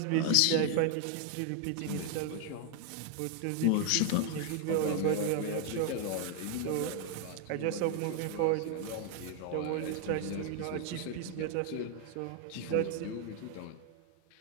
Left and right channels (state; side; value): different; both; correlation 0.00